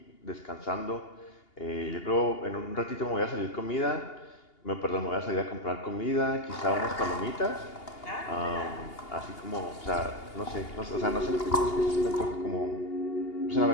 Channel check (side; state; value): right; late; 2.8 ms